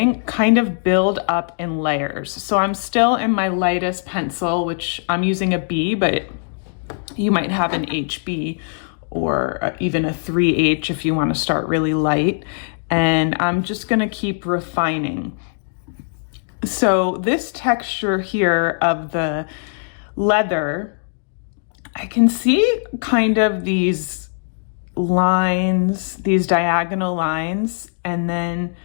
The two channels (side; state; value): right; silent; digital silence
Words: kind of build up in layers. So I'm still in my lightest pencil, which I'm using a B, but you might have an HB or even a 3H if you want to start really light. And I'm just gonna keep refining. So this texture here of the leather, I can see kind of these lines, these diagonal lines, and then